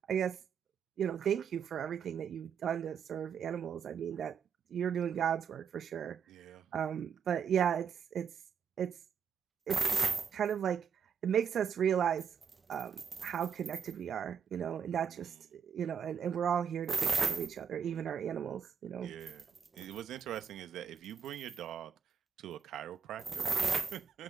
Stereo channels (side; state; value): left; quieter; 7.1 dB